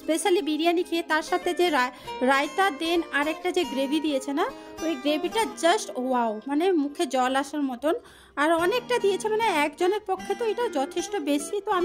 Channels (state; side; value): identical; both; correlation 1.00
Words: বিরিয়ানি খেয়ে, তার সাথে যে রায়তা দেন আর একটা যে গ্রেভি দিয়েছে না, ওই গ্রেভিটা জাস্ট ওয়াও, মানে মুখে জল আসার মতন, আর অনেকটা দিয়েছে, মানে একজনের পক্ষে তো এটা যথেষ্ট বেশি, তো